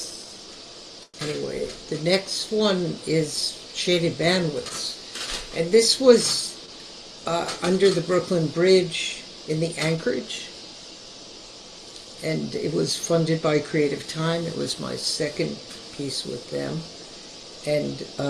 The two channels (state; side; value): identical; both; correlation 1.00